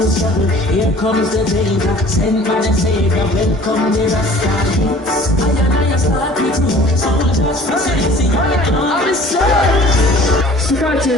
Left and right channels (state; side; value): normal; both; correlation 0.49